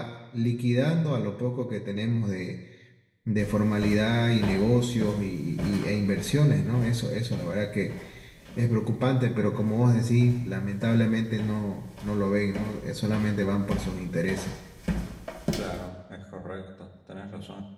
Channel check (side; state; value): both; identical; correlation 1.00